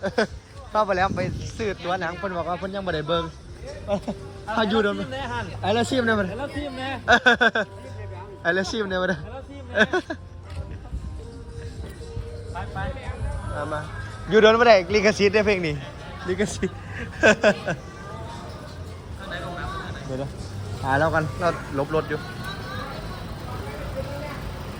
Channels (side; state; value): both; identical; correlation 1.00